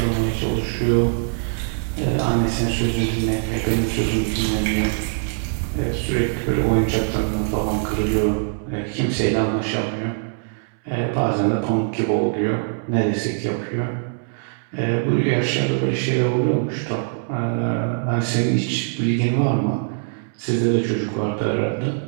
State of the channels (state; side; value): silent; left; digital silence